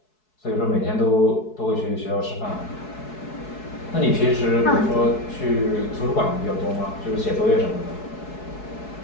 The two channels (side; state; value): right; late; 4.7 ms